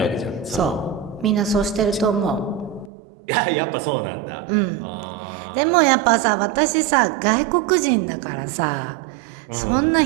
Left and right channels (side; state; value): left; drops out; at 2.9 s